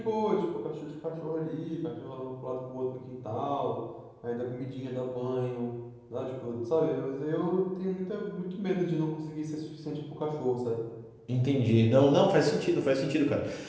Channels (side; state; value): both; identical; correlation 1.00